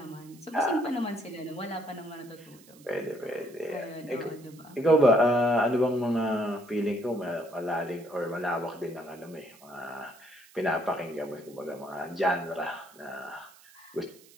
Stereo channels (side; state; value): right; noise; hiss, 24 dB below the sound